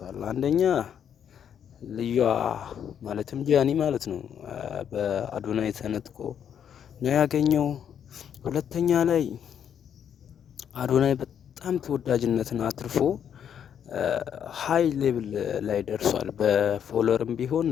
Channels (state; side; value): quieter; right; 8.7 dB